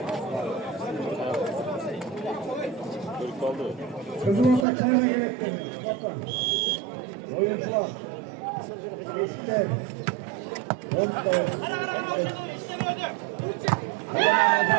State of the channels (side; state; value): left; drops out; at 4.7 s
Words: Kızıl Ataklar'a gerektim. Oyuncular. Geçti.